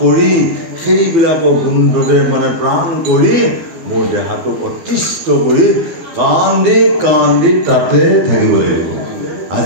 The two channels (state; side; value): late; left; 12 ms